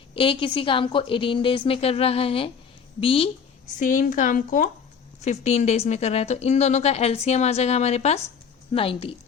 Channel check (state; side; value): quieter; right; 6.5 dB